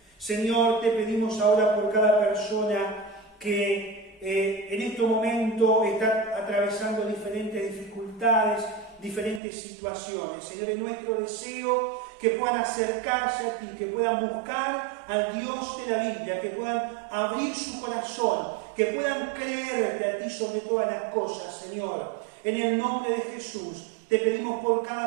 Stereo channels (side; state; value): left; drops out; at 9.4 s